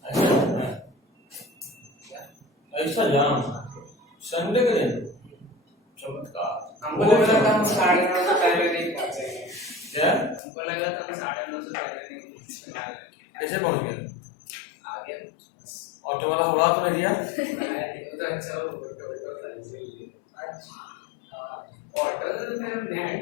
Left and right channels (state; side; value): drops out; right; at 10.4 s